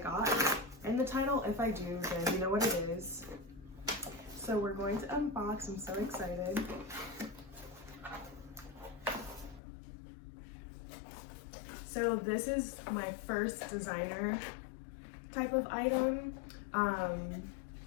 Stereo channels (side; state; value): right; drops out; at 9.6 s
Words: got in the title. If I do, then you know what it is. So we're going to unbox. I'm so excited. So this is my first designer type of item.